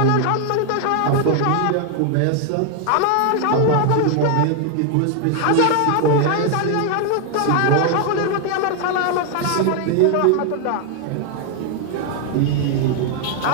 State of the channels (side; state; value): both; different; correlation 0.00